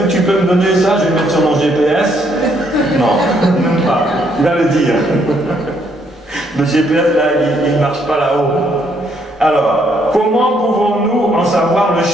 tu peux me donner ça? Je vais mettre sur mon GPS. Non, même pas. Il va le dire. Le GPS, là, il ne marche pas là-haut. Alors, comment pouvons-nous en savoir le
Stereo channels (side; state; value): both; normal; correlation 0.71